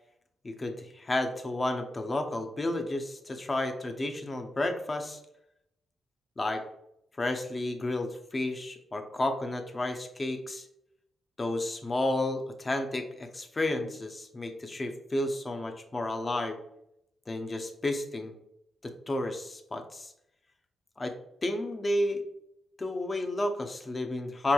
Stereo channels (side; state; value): both; normal; correlation 0.90